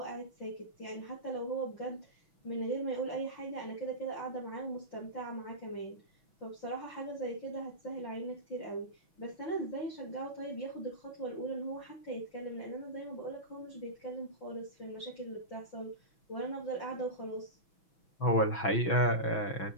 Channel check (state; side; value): late; right; 6.1 ms